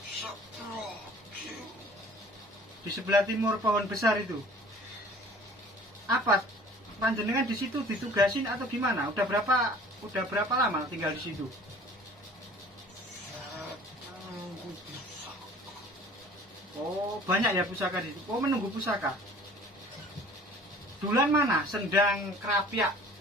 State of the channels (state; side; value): normal; both; correlation 0.49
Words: Di sebelah timur pohon besar itu. Apa? Panjenengan di situ ditugasin atau gimana? Udah berapa lama tinggal di situ? Oh, banyak ya pusaka di situ. Oh, menunggu pusaka. Dulan mana? Sendang Kerapia.